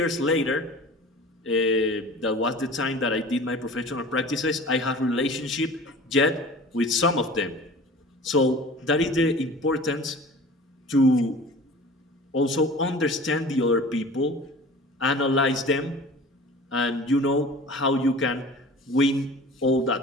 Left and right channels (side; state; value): both; normal; correlation 0.41